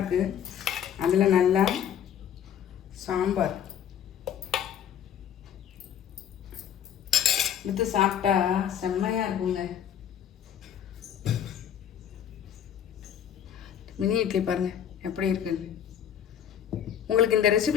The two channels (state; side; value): quieter; right; 9.3 dB